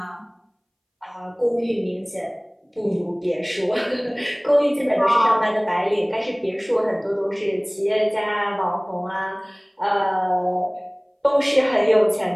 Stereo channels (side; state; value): both; identical; correlation 1.00